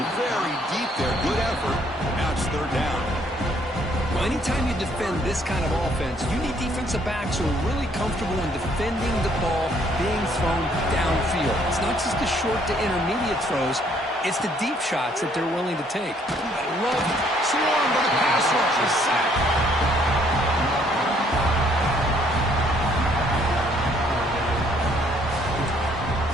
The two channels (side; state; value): both; normal; correlation 0.65